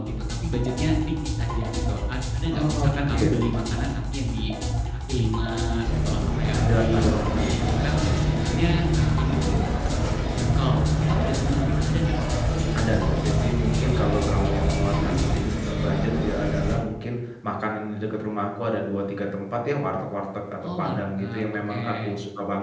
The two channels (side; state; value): both; identical; correlation 1.00